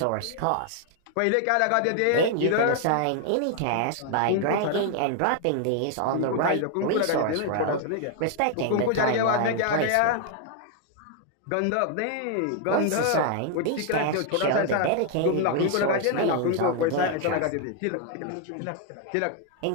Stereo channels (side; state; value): both; different; correlation 0.00